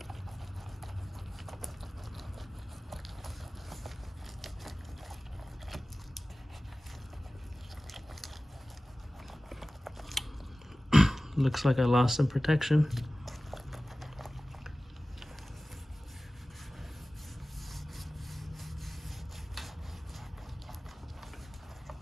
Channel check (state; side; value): normal; both; correlation 0.97